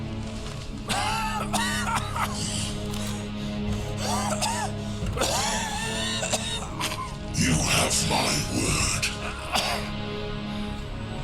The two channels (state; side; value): identical; both; correlation 1.00